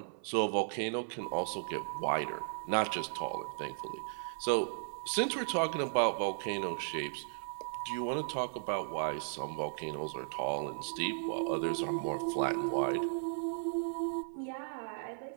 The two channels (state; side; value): silent; left; 54 dB below the other